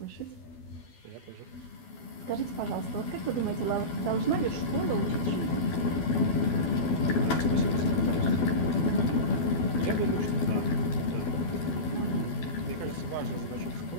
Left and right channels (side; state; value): right; late; 12 ms